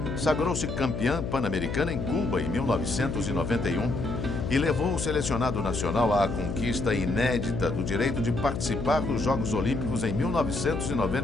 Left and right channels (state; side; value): noise; left; hum, 4 dB below the sound